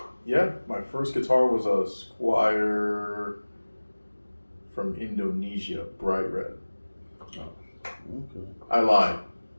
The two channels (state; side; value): inverted; both; correlation -1.00